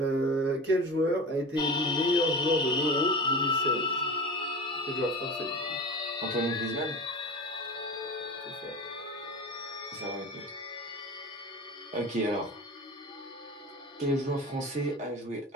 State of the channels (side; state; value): both; normal; correlation 0.32